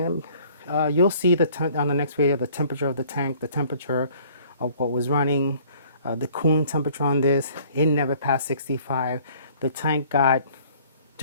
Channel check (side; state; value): both; inverted; correlation -0.55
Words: you'll see on the next video the temperature of the tank, the temperature of what was running, the cooling temperature on this. It never passed 65. The tank got,